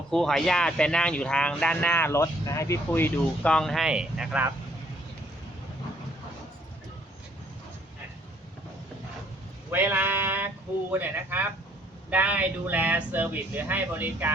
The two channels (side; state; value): both; normal; correlation 0.64